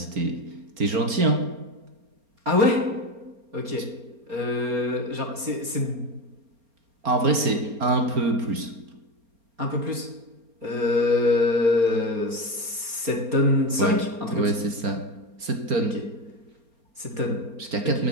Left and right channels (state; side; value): late; left; 4.4 ms